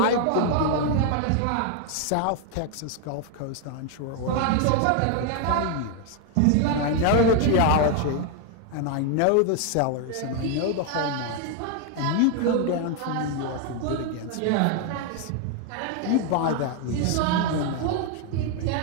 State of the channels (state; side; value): different; both; correlation 0.01